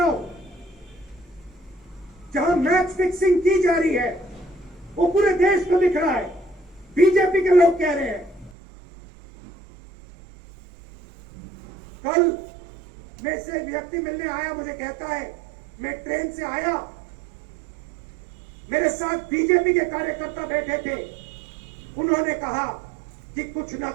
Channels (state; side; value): drops out; left; at 8.6 s